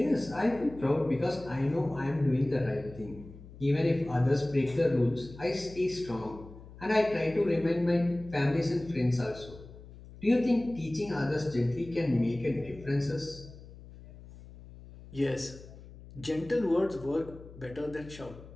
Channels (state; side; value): noise; left; hum, 18 dB below the sound